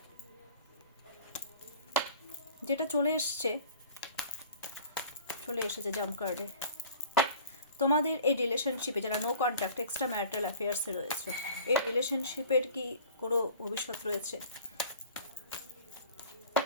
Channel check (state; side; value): inverted; both; correlation -0.46